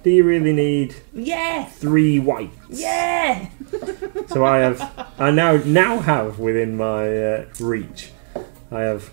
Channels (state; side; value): silent; left; digital silence